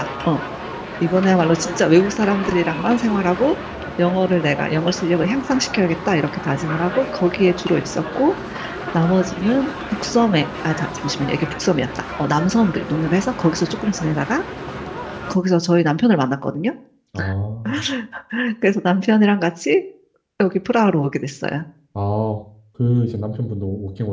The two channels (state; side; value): identical; both; correlation 1.00